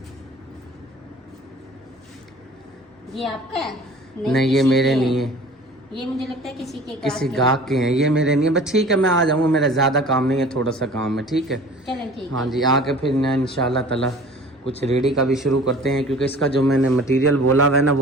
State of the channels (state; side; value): normal; both; correlation 0.45